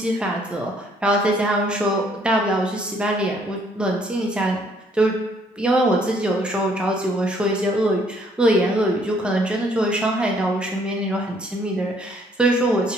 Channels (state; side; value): normal; both; correlation 0.65